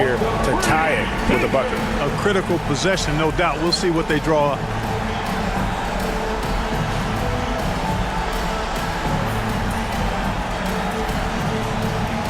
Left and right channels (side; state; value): both; identical; correlation 1.00